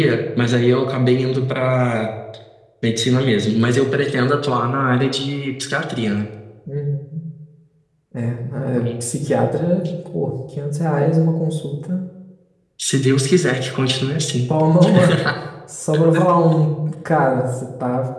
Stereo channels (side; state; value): both; identical; correlation 1.00